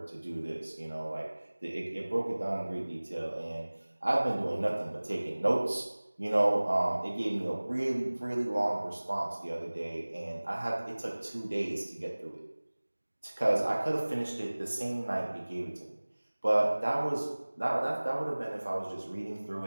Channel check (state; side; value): inverted; both; correlation -1.00